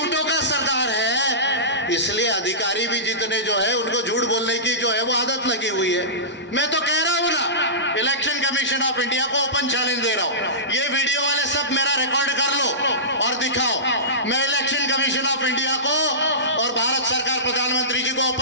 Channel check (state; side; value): normal; both; correlation -0.19